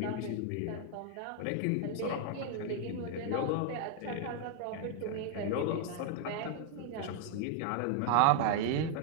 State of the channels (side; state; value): both; different; correlation 0.00